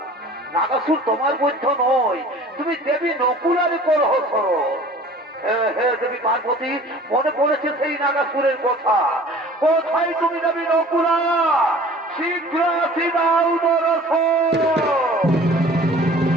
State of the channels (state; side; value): normal; both; correlation 0.47